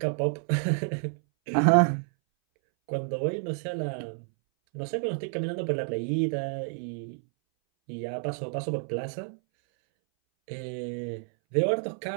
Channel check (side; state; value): left; silent; 58 dB below the other